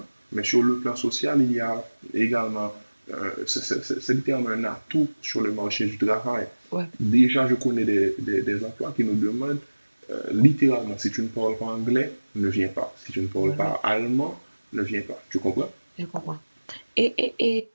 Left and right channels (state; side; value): inverted; both; correlation -1.00